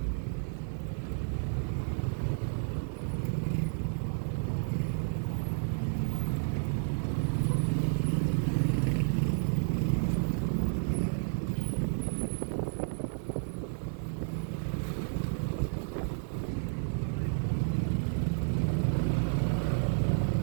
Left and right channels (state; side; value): silent; left; 57 dB below the other